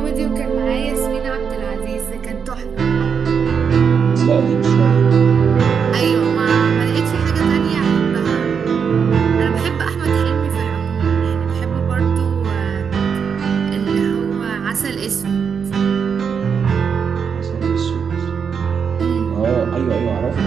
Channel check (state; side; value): quieter; left; 6.6 dB